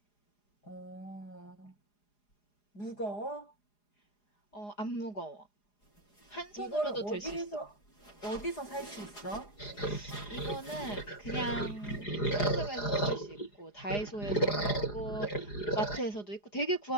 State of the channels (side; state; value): right; late; 4.9 ms